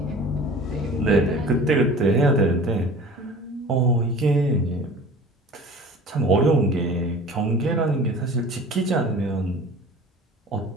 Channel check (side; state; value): both; normal; correlation 0.42